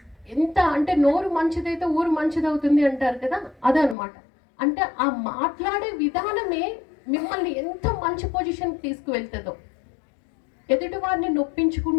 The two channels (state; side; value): drops out; right; at 4.0 s